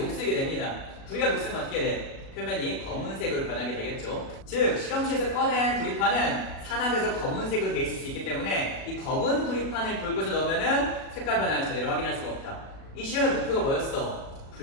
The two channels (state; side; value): late; right; 37 ms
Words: 됩니다. 구리가 녹슬면 어떻게 돼? 표면이 검은색으로 변하게 되겠죠. 즉 실험실에서 꺼낸 구리판은 산화돼서 검은색으로 돼 있을 수 있기 때문에 이 검은 구리판을 붉은색 넣으면은 색깔 변화를 제대로 확인할 수가 없다. 이 실험의 목표가 뭐였어?